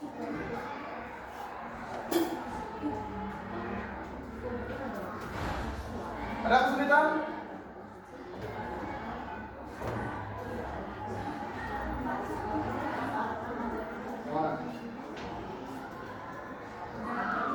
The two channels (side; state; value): both; identical; correlation 1.00